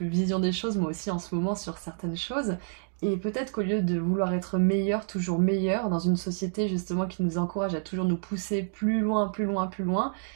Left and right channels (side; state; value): left; silent; digital silence